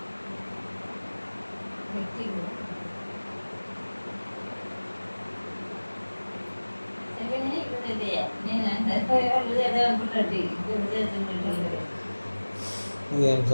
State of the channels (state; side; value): inverted; both; correlation -1.00